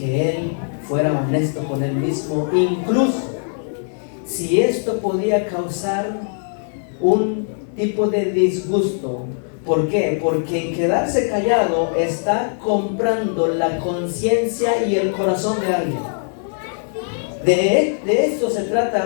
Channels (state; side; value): silent; right; digital silence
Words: él fuera honesto con él mismo, incluso si esto podía causar un tipo de disgusto. ¿Por qué? Porque en quedarse callado está comprando la conciencia y el corazón de alguien. De esto se